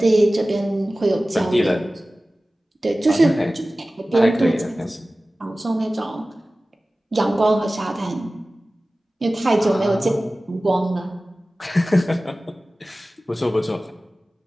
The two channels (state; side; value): normal; both; correlation 0.97